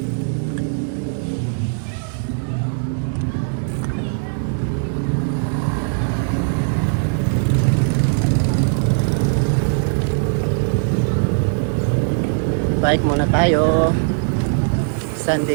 Bike muna tayo.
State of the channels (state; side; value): silent; left; digital silence